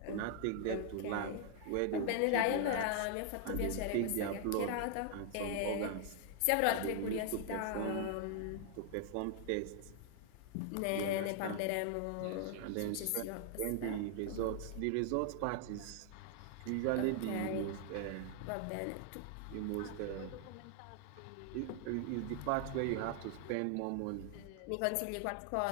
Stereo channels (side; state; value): both; different; correlation 0.00